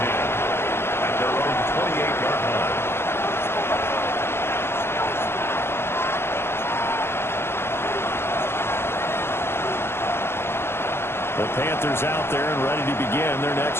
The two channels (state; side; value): late; right; 0.12 ms